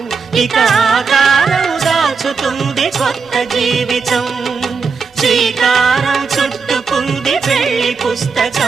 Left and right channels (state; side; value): quieter; left; 5.2 dB